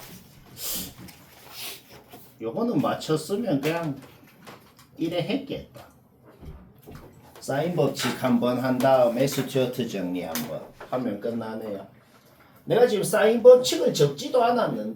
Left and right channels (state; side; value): identical; both; correlation 1.00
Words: 요거는 맞췄으면 그냥 이래 했겠다. 사인 법칙 한번 한 다음에 스튜어트 정리 한번 하면 끝나네요. 내가 지금 사인 법칙을 적지도